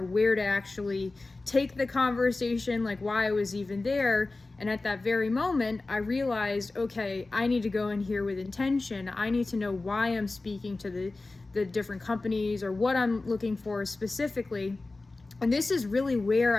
where to actually take the conversation, like why I was even there. And at that very moment, I realized, okay, I need to go in here with intention. I need to know why I'm speaking to the different companies or what I'm looking for specifically. And this is really where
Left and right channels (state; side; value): quieter; right; 3.3 dB